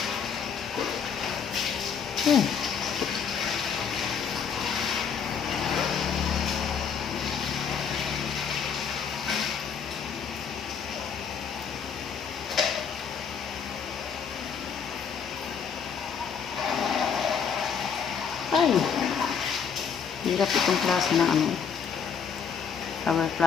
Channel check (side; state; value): right; quieter; 6.9 dB